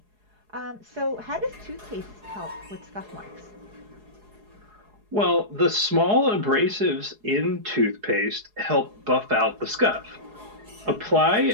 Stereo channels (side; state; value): left; late; 4.7 ms